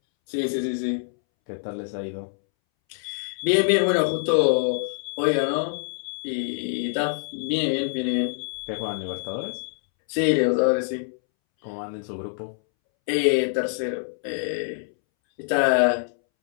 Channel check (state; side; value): silent; right; 62 dB below the other